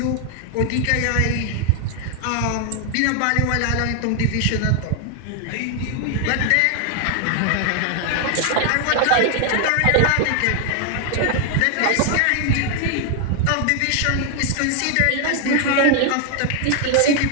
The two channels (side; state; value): both; different; correlation 0.00